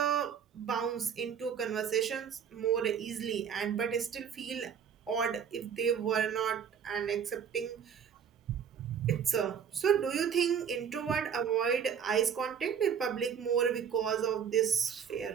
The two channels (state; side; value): quieter; left; 7.5 dB